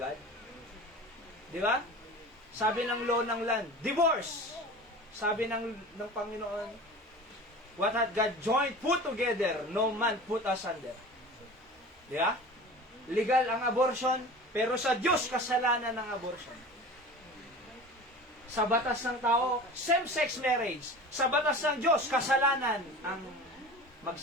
Di ba? Sabi ng law ng land, divorce! Sabi ng Panginoon, what had God joined, put together, no man put asunder. Di ba? Legal ang abortion, pero sa Diyos kasalanan ng abortion. Sa batas ng tao, same-sex marriage. Sa batas ng Diyos, kasalanan ang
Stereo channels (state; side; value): normal; both; correlation 0.36